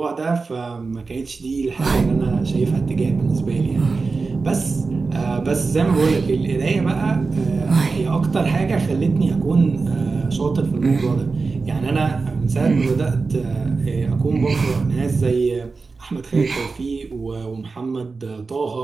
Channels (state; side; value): quieter; left; 4.2 dB